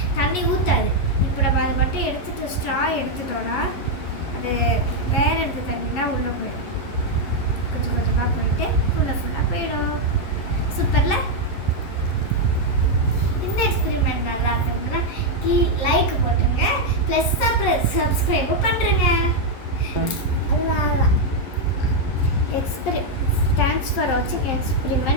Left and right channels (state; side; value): late; right; 11 ms